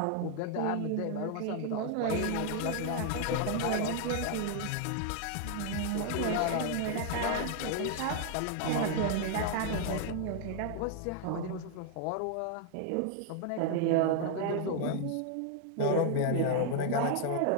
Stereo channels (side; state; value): both; different; correlation 0.00